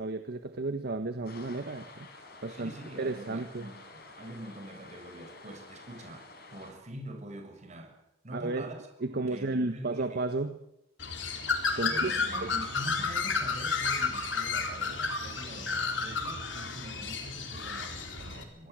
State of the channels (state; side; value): normal; both; correlation 0.31